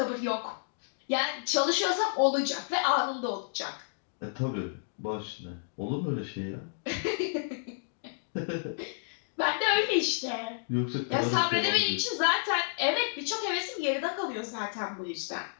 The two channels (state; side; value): silent; right; digital silence